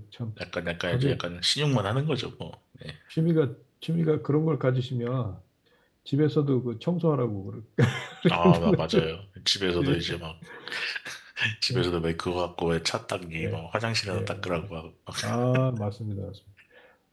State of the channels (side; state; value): both; identical; correlation 1.00